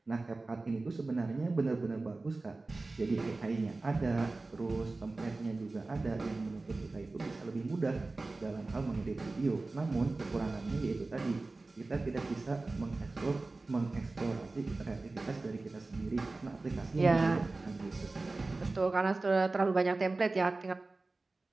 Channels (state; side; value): quieter; left; 3.4 dB